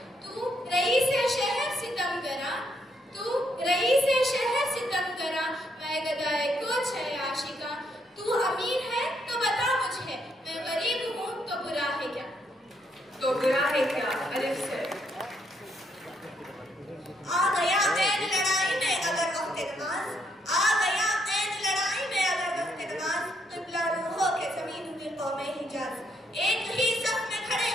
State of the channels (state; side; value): normal; both; correlation 0.74